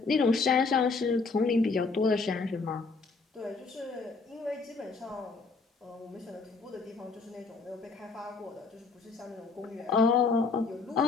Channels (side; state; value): right; quieter; 4.2 dB